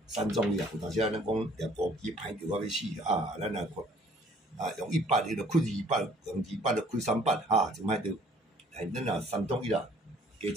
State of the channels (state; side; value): normal; both; correlation 0.57